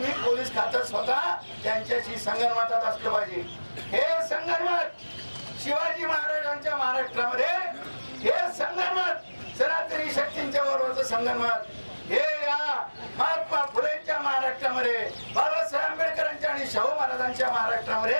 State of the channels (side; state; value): both; inverted; correlation -1.00